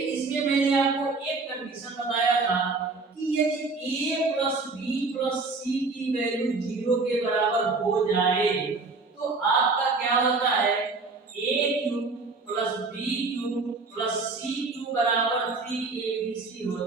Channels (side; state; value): left; quieter; 3.9 dB